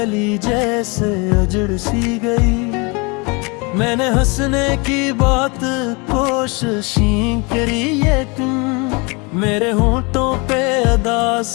जैसे उजड़ सी गई। मैंने हंसने की बात कोशिशें करी, ये तुम मेरे होंठों पे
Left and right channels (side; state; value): right; quieter; 29.3 dB